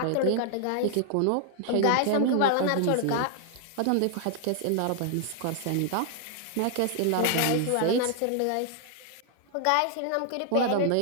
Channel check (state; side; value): different; both; correlation 0.00